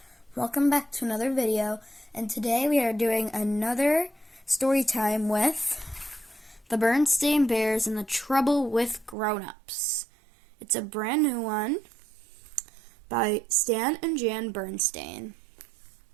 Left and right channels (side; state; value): left; drops out; at 9.2 s